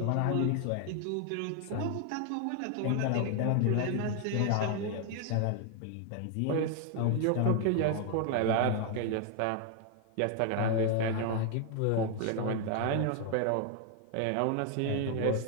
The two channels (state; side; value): different; both; correlation 0.00